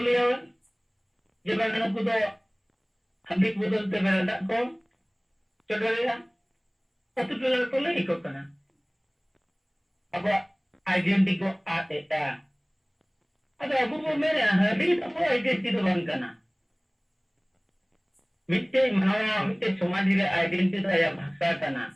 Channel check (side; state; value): both; identical; correlation 1.00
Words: जब मैंने को तो हबिक बदलते मेरा को चढ़ेगा तो तो तो ले को करना अब आइडेंटिटी को आते था अब अबू वो मेरे हबिक तो आइडेंटिटी तो बन करना मिट्टे मनवा मिट्टे समाज रे आइडेंटिटी आया भाषा करना